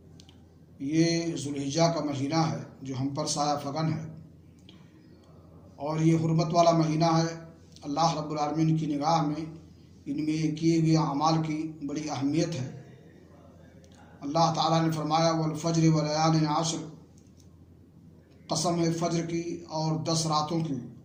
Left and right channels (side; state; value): both; identical; correlation 1.00